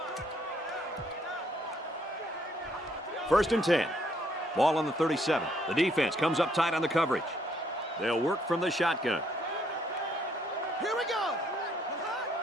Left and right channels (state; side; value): normal; both; correlation 0.69